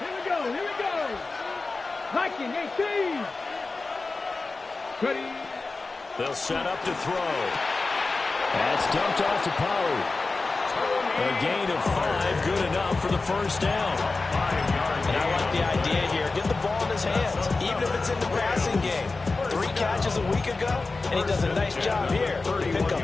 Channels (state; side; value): quieter; right; 3.7 dB